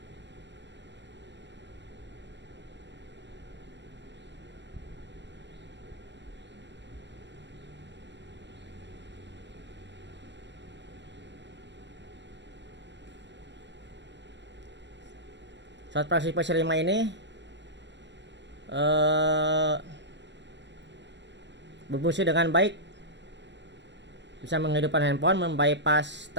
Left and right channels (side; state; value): left; late; 0.52 ms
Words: Saat versi 5 ini berfungsi dengan baik, bisa menghidupkan handphone, membypass